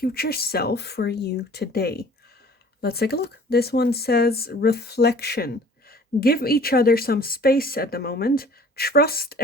self for you today. Let's take a look. This one says, reflection. Give each other some space at the moment. Trust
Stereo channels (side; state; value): both; normal; correlation 0.50